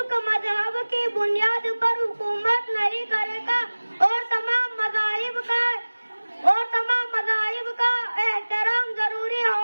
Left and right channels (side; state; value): both; inverted; correlation -1.00